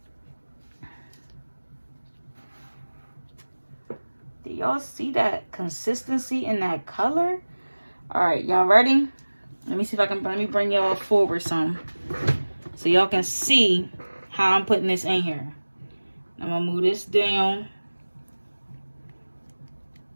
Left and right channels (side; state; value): both; inverted; correlation -1.00